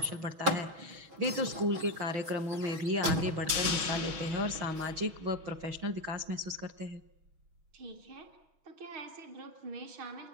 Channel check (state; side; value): late; left; 6.2 ms